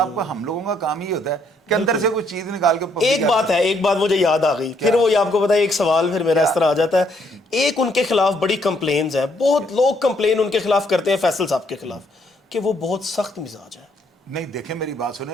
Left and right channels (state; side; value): normal; both; correlation 0.70